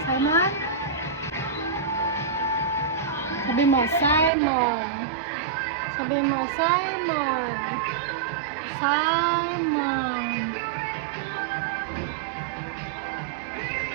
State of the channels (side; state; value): left; drops out; at 4.3 s